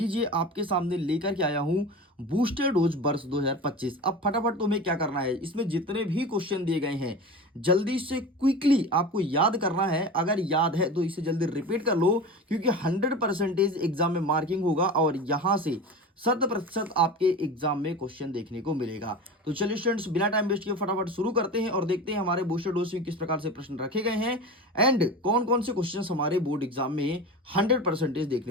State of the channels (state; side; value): normal; both; correlation 0.30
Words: आपके सामने लेकर के आया हूं बूस्टर डोज वर्ष 2025। अब फटाफट तुम्हें क्या करना है, इसमें जितने भी क्वेश्चन दिए गए हैं जल्दी से क्विकली आपको याद करना है। अगर याद है तो इसे जल्दी रिपीट कर लो, क्योंकि 100% एग्जाम में मार्किंग होगा और यहां से 100% आपके एग्जाम में क्वेश्चन देखने को मिलेगा। तो चलिए स्टूडेंट्स, बिना टाइम वेस्ट किए फटाफट शुरू करते हैं और देखते हैं हमारे बूस्टर डोज में किस प्रकार से प्रश्न रखे गए हैं एंड कौन कौन से क्वेश्चन हमारे बोर्ड एग्जाम में 100%